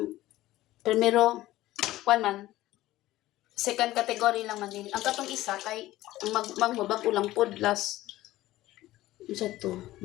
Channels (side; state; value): right; quieter; 16.1 dB